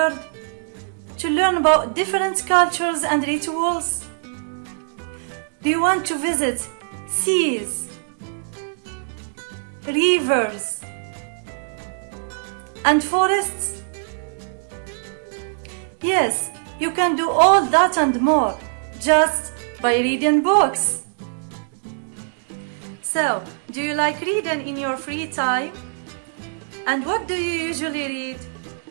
to learn about different cultures and rituals? Do you want to visit seas, rivers, and forests? Yes, you can do all that and more just by reading books. So, do you like reading in your free time? And what do you usually read?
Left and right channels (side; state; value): left; silent; digital silence